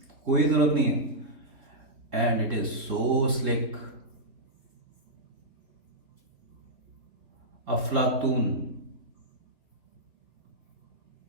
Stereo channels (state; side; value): late; left; 3.4 ms